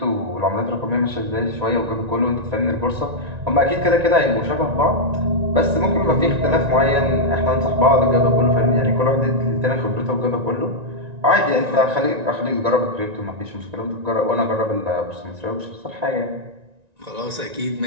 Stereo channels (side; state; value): left; late; 1.9 ms